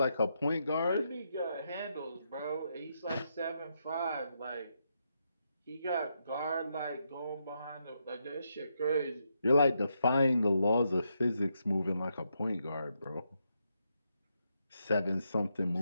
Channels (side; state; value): both; inverted; correlation -0.81